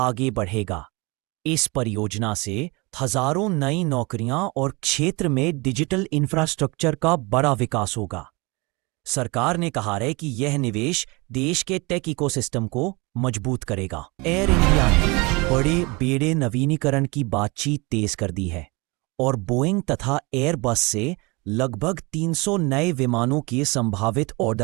बढ़ेगा। इस परियोजना से हजारों नई नौकरियां और क्षेत्र में डिजिटल इंफ्रास्ट्रक्चर का बड़ा विकास होगा। सरकार ने कहा है कि यह निवेश देश के टेक इकोसिस्टम को मजबूत करेगा। एयर इंडिया ने बड़े बेड़े नवीनीकरण की बातचीत तेज कर दी है और बोइंग तथा एयरबस से लगभग 300 नए विमानों के संभावित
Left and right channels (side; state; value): left; quieter; 26.4 dB